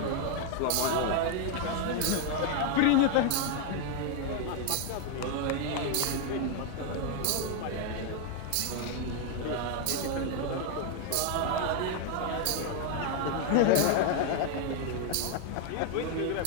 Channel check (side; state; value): both; different; correlation 0.01